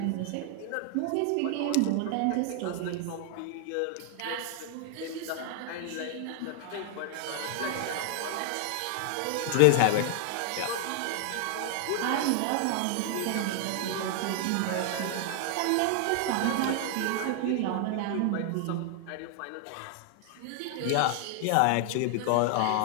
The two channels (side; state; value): both; different; correlation 0.00